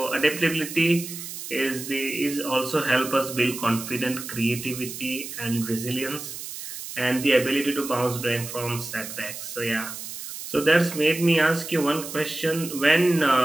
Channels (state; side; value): noise; right; hiss, 9 dB below the sound